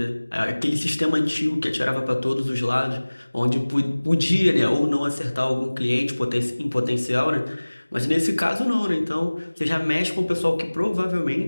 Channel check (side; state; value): both; inverted; correlation -1.00